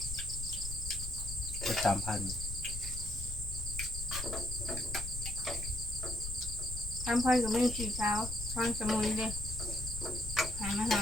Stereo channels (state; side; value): noise; left; rumble, 7 dB below the sound